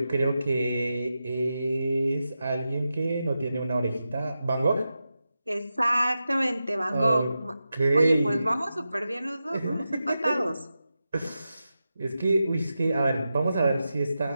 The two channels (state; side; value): inverted; both; correlation -0.90